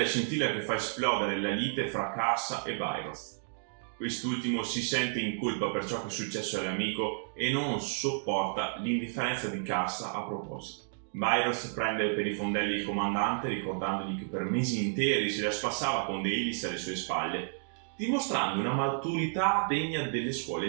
scintilla che fa esplodere la lite fra Karsa e Bairoth. Quest'ultimo si sente in colpa per ciò che è successo all'amico e non sopporta l'indifferenza di Karsa a proposito. Bairoth prende per i fondelli il comandante ricordandogli che per mesi interi se la spassava con Deilis alle sue spalle, dimostrando una maturità degna delle scuole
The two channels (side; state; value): left; silent; digital silence